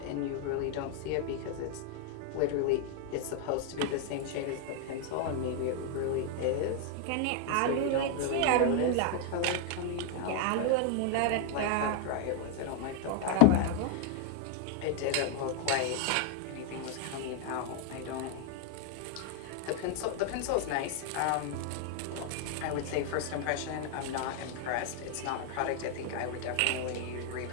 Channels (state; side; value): different; both; correlation 0.00